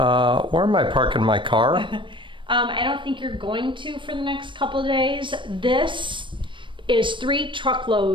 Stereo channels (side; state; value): left; late; 0.24 ms